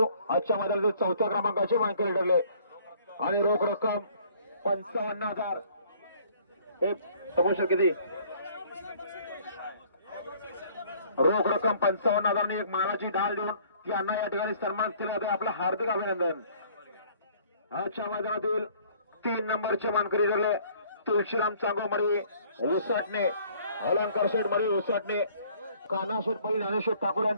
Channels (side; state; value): both; inverted; correlation -0.57